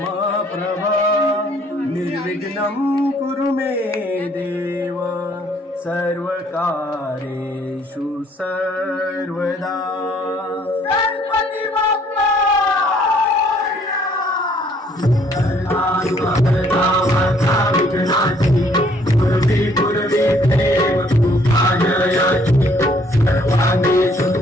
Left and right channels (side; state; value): both; normal; correlation 0.63